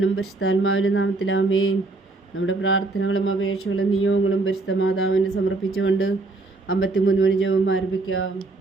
പരിശുദ്ധാത്മാവിനും നാമത്തിൽ ആമേൻ. നമ്മുടെ പ്രാർത്ഥനകളും അപേക്ഷകളും നിയോഗങ്ങളും പരിശുദ്ധ മാതാവിന് സമർപ്പിച്ചുകൊണ്ട് 53 മണി ജപം ആരംഭിക്കാം.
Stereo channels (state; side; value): quieter; left; 3.3 dB